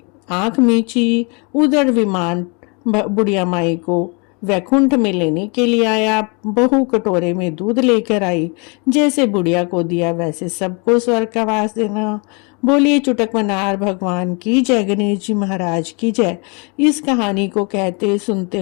आंख मीची, उधर विमान बुढ़िया माई को वैकुंठ में लेने के लिए आया। बहू कटोरे में दूध लेकर आई। जैसे बुढ़िया को दिया वैसे सबको स्वर्ग का वास देना। बोलिए चुटक मनार भगवान की जय, गणेश जी महाराज की जय। इस कहानी को कहते सुनते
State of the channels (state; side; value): quieter; right; 32.9 dB